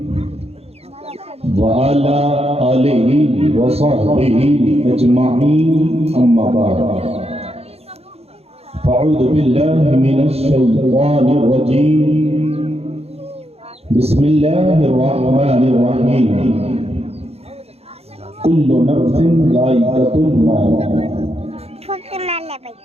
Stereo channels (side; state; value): left; late; 0.29 ms